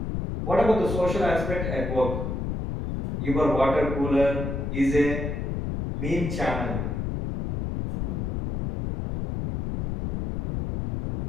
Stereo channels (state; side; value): noise; left; rumble, 2 dB below the sound